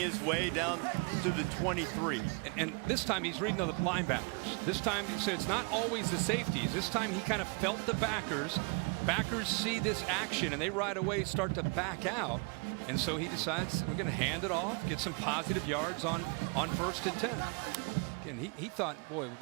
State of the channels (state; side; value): quieter; left; 32.6 dB